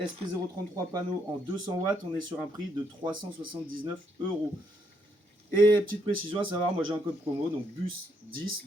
panneaux en 200 watts, on est sur un prix de 379 €. Et petite précision à savoir, moi j'ai un code promo, donc BUS10,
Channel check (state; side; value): normal; both; correlation 0.74